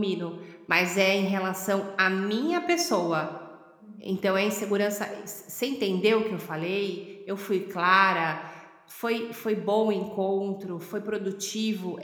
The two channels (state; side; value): identical; both; correlation 1.00